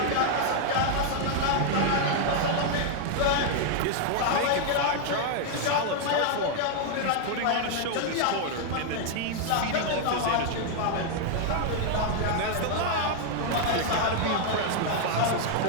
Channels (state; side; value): different; both; correlation 0.00